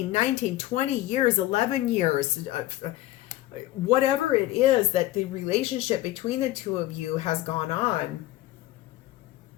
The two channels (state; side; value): quieter; right; 16.0 dB